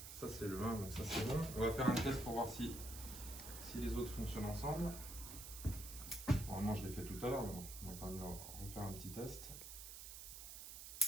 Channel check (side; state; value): right; noise; hiss, 10 dB below the sound